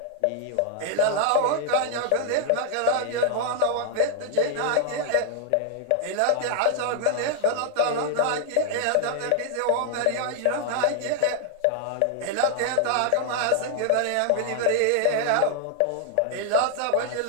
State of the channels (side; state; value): both; different; correlation 0.00